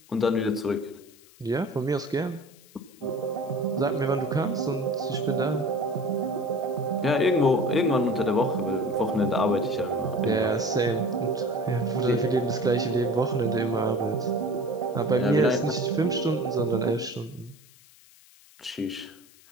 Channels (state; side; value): noise; left; hiss, 26 dB below the sound